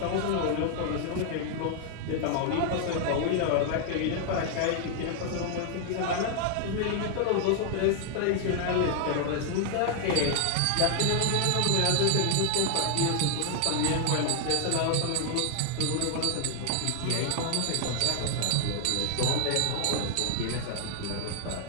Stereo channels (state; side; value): different; both; correlation 0.00